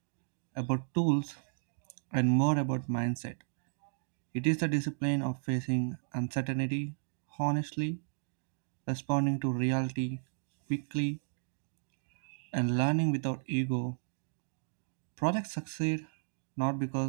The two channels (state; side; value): silent; left; digital silence